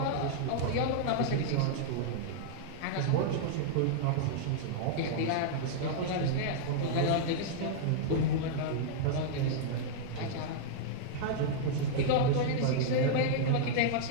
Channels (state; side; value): different; both; correlation -0.01